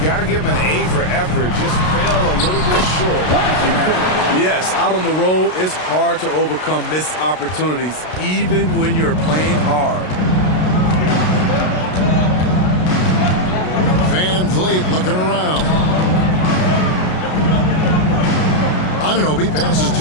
got to give him an A for effort. Just fell a little bit short. Yes, out on the road, it's hard to overcome missed opportunities, even when you're playing hard. Van Vliet looking around. Anunoby passes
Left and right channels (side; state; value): right; late; 33 ms